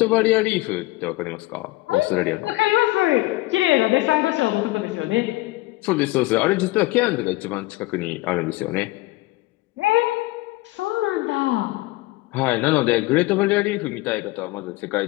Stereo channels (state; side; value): quieter; right; 19.9 dB